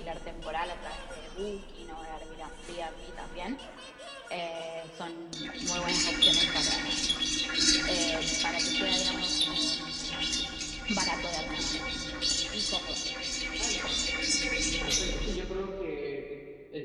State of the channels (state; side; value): identical; both; correlation 1.00